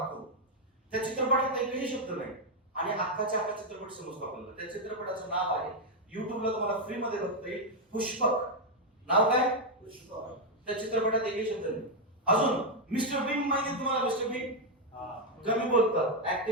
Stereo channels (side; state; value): both; normal; correlation 0.01